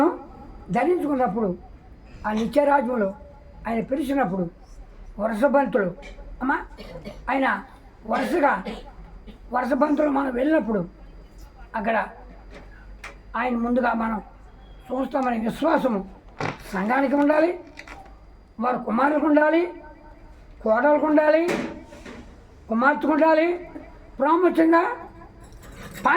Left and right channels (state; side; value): identical; both; correlation 1.00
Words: ధరించుకున్నప్పుడు ఆ నిత్యరాజ్యంలో ఆయన పిలిచినప్పుడు వరుసబంతులు అమ్మా, ఆయన వరుసబంతులు మనం వెళ్ళినప్పుడు అక్కడ ఆయన ముందుగా మనం చూస్తామనే విశ్వాసము సంఘానికి ఉండాలి, వారి కుమారులకు ఉండాలి, కోడలకు ఉండాలి, కుమార్తెకు ఉండాలి, ప్రాముఖ్యంగా